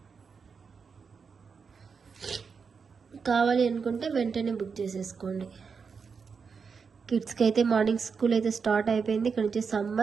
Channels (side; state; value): left; quieter; 5.6 dB